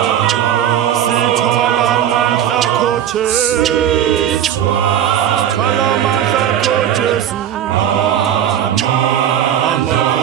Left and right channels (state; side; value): quieter; left; 10.2 dB